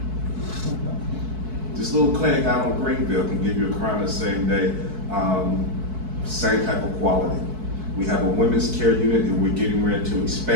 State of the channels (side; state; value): left; late; 4.6 ms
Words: This little clinic out on Greenville can give you a crown the same day, same type of quality. We have a women's care unit that we're getting ready to